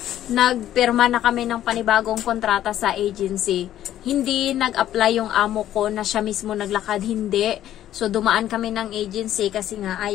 nagpirma na kami ng panibagong kontrata sa agency. Hindi nag-apply yung amo ko na siya mismo naglakad, hindi. So dumaan kami ng agency kasi nga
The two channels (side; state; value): right; quieter; 12.2 dB